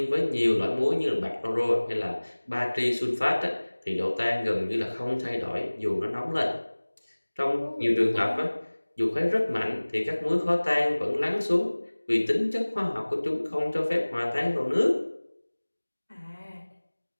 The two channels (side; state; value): both; inverted; correlation -1.00